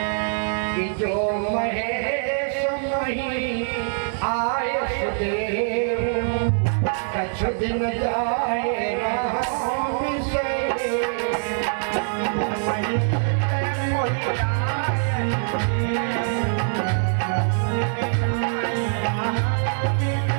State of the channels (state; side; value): silent; left; digital silence